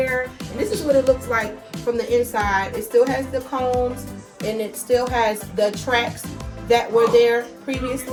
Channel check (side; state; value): both; identical; correlation 1.00